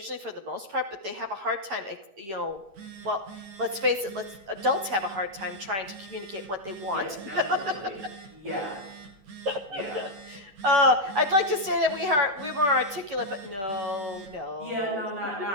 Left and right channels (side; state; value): left; late; 10 ms